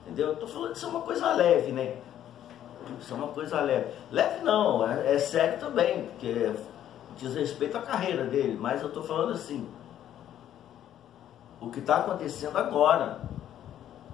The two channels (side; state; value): right; quieter; 11.1 dB